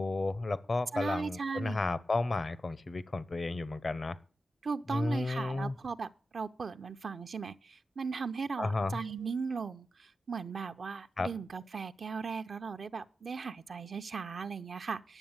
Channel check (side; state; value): both; normal; correlation 0.90